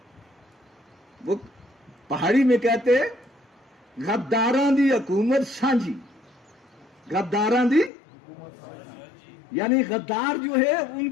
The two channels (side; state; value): right; drops out; at 7.9 s